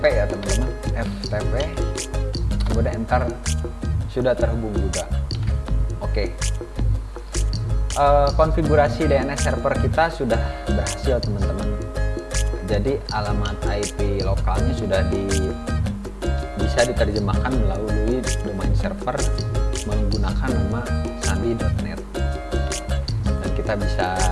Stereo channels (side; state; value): both; identical; correlation 1.00